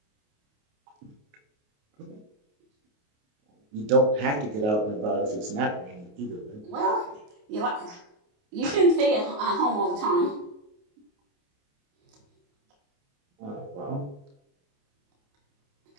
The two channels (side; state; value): left; late; 28 ms